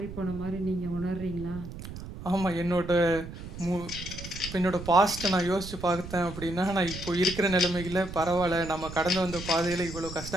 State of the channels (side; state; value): right; noise; rumble, 11 dB below the sound